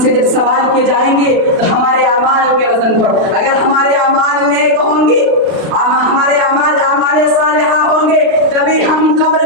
سے جب سوال کیے جائیں گے تو ہمارے اعمال کے وزن پر, اگر ہمارے اعمال نیک ہوں گے, ہمارے اعمال صالحہ ہوں گے, تبھی ہم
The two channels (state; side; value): late; left; 36 ms